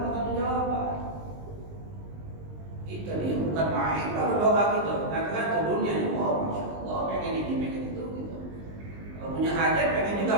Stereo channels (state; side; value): late; left; 19 ms